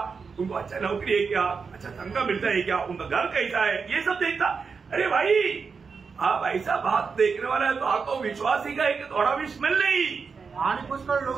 उनको अच्छा नौकरी है क्या, अच्छा तनख्वाह मिलता है क्या, उनका घर कैसा है, ये सब देखता. अरे भाई, आप ऐसा बात देखने वाला है तो आपको विश्वासी का एक थोड़ा भी स्मेल नहीं. आणि पुष्कळ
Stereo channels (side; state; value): left; quieter; 5.3 dB